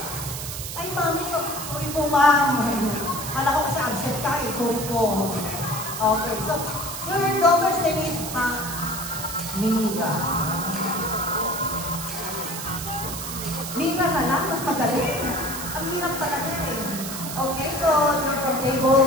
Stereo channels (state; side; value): noise; right; hiss, 7 dB below the sound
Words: Ay, mami, sorry po, ma'am. Kala ko kasi absent ka eh. Sorry po. Okay, so your daughter's name is Mira. Mira na lang, mas magaling. Ang hirap talaga eh. Okay, so you're from